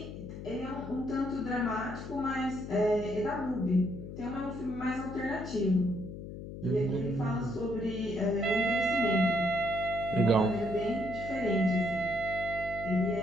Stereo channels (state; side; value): noise; left; hum, 10 dB below the sound